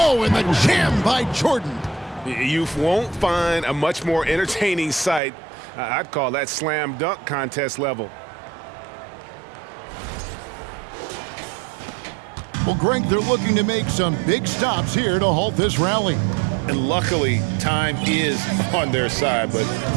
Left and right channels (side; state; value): left; drops out; at 5.2 s